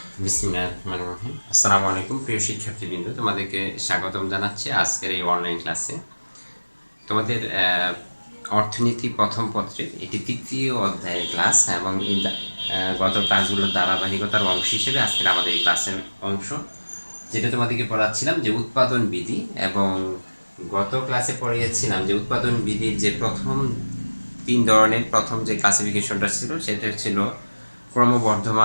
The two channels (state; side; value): inverted; both; correlation -1.00